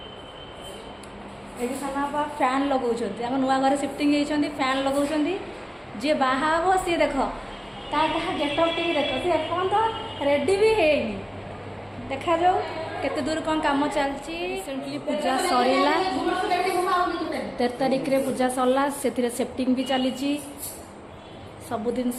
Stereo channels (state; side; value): identical; both; correlation 1.00